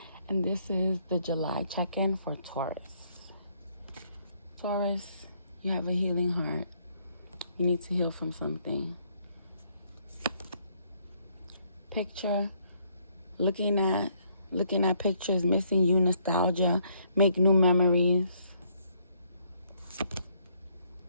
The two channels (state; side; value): inverted; both; correlation -0.68